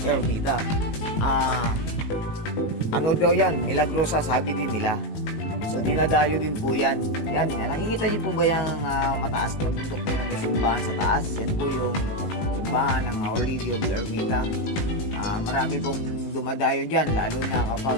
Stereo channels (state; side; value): late; right; 19 ms